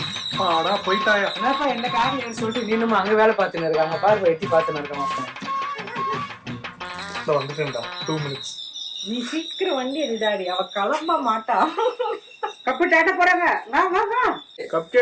பாடா போயிட்டாயா? என்னப்பா என்ன காரியம் சொல்லிட்டு நீனும் அங்க வேலை பார்த்துன்னு இருக்காங்க பாரு. எட்டி பார்த்துன்னு இருக்க மாட்டேன். வந்துட்டேன்டா. 2 minutes. நீ சீக்கிரம் வண்டி எடுடாடி, அவ கிளம்ப மாட்டா. கப்பு டேட்ட போறாங்க. வா. கப்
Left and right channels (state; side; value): identical; both; correlation 1.00